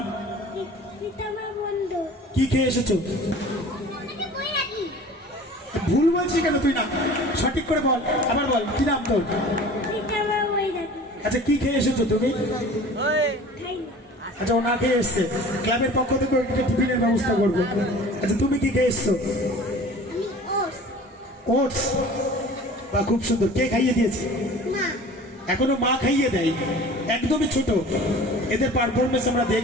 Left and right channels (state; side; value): normal; both; correlation 0.43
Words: রীতামা মণ্ডল। কি খেয়ে এসেছো? ভুল বলছিস কেন তুই? না সঠিক করে বল, আবার বল কি নাম তোর? রীতামা বৈরাগী। আচ্ছা কি খেয়ে এসেছো তুমি? খাই না। আচ্ছা ও না খেয়ে এসছে, ক্লাবের পক্ষ থেকে একটা টিফিনের ব্যবস্থা করবো। আচ্ছা তুমি কি খেয়ে এসছো? আমি ওটস। ওটস? বা খুব সুন্দর। কে খাইয়ে দিয়েছে? মা। এখনো মা খাইয়ে দেয়? একদমই ছোট। এদের পারফরমেন্স আমরা